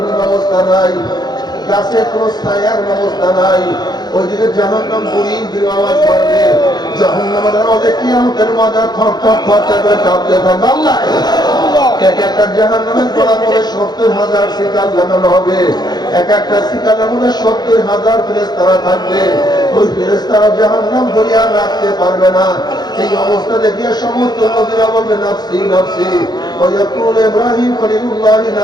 ব্যবস্থা নাই, গাছের কোন ছায়ার ব্যবস্থা নাই। ওইদিকে জাহান্নাম বুড়ির দিকে আওয়াজ করবে, জাহান্নামের আওয়াজে কিয়ামতের ময়দানে থরথর থরথর করে কাঁপতে থাকবে। আল্লাহ এক একটা জাহান্নামের গলার মধ্যে 70,000 শিকাল লাগানো হবে। এক একটা শিকালের মধ্যে 70,000 ফেরেশতারা থাকবে। ওই ফেরেশতারা জাহান্নাম ধরিয়া রাখতে পারবে না। এই অবস্থা দেখিয়া সমস্ত নবীরা বলবে নাফসি নাফসি। ويقول إبراهيم خليل الله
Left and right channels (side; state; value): right; late; 0.20 ms